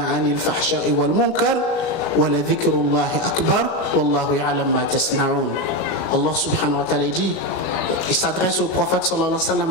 'anil fahsha'i wal munkar wa la dhikrullahi akbar wallahu ya'lam ma tasna'un. Allah subhanahu wa ta'ala dit, il s'adresse au prophète sallallahu alayhi wa sallam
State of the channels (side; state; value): right; late; 37 ms